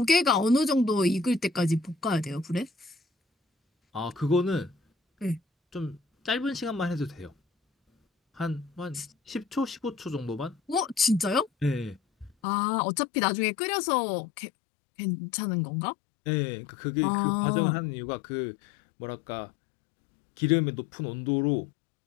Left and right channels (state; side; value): drops out; right; at 12.4 s